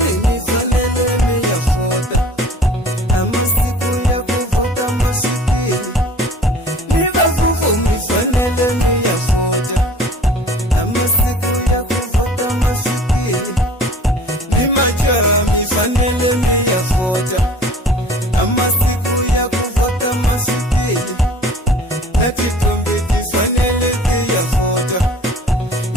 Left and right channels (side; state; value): both; normal; correlation 0.47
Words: mi fanele me ya vota Ama siku ya kuvota mashiki Niva vuvu mi fanele me ya vota Ama siku ya kuvota mashiki Ni majara mi fanele me ya vota Ama siku ya kuvota mashiki Na kitumbi kifanele ki ya vota